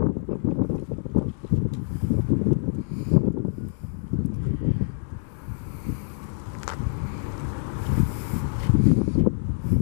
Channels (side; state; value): right; silent; digital silence